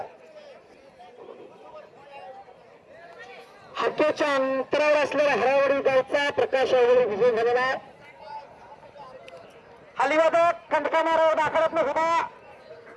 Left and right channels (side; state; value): both; identical; correlation 1.00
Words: हाकेच्या अंतरावर असलेल्या हरावडी गावचा प्रकाश आंगोळे विजय झालेला. हलिवादक खंडकामारावर दाखलत न सुद्धा